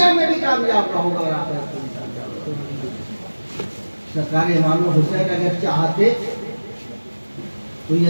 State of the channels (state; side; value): inverted; both; correlation -1.00